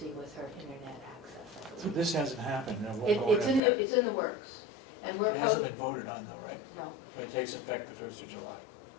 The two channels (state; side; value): drops out; right; at 3.6 s